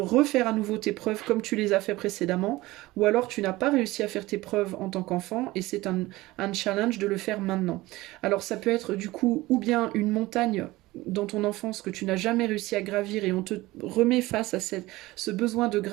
à nouveau tes preuves comme tu les as fait précédemment, ou alors tu n'as pas réussi à faire tes preuves en tant qu'enfant, et c'est un challenge de le faire maintenant. Alors ça peut être du coup, ou bien une montagne dans ton enfance que tu n'as jamais réussi à gravir et on te remet face à ce besoin de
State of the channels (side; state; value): left; quieter; 19.1 dB